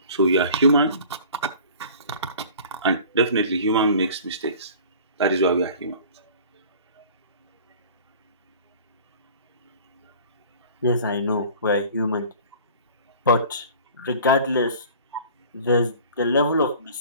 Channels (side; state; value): both; inverted; correlation -0.45